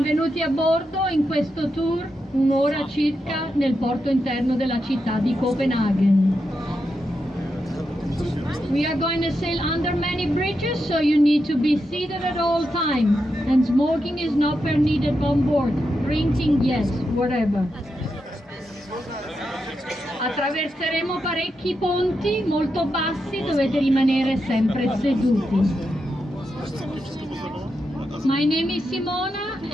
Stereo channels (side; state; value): both; normal; correlation 0.86